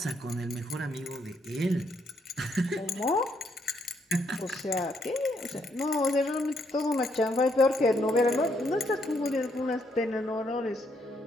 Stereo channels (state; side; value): normal; both; correlation 0.74